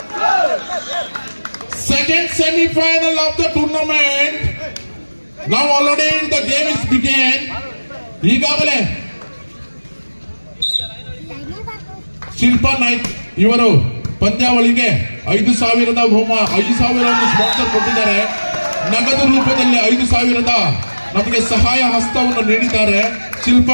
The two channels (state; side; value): inverted; both; correlation -1.00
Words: Second semi-final of the tournament. Now already the game is began. ಈಗಾಗಲೇ ಶಿಲ್ಪಾ ನಾಯ್ಕ್ ಇವರು ಪಂದ್ಯಾವಳಿಗೆ 5,000 ಸ್ಪಾನ್ಸರ್ ಕೊಟ್ಟಿದ್ದಾರೆ. ನಗದು ರೂಪದಲ್ಲಿ 5,000 ನಮಗೆ ಸಹಾಯ ಹಸ್ತವನ್ನು ನೀಡಿದ್ದಾರೆ.